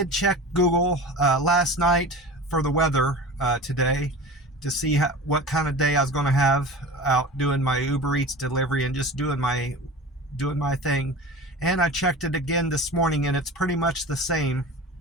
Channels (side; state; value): both; normal; correlation 0.35